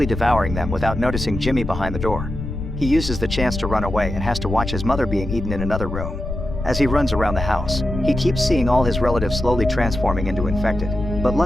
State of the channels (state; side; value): noise; left; rumble, 6 dB below the sound